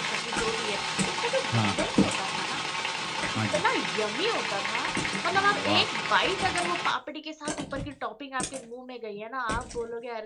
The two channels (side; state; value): both; identical; correlation 1.00